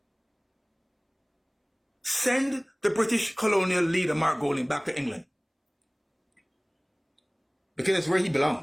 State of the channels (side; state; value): both; identical; correlation 1.00